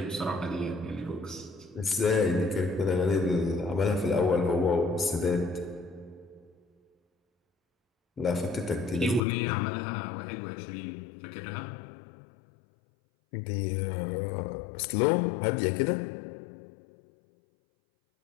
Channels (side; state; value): right; drops out; at 9.2 s